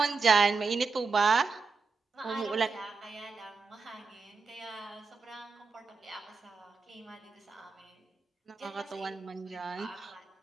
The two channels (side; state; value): left; quieter; 4.5 dB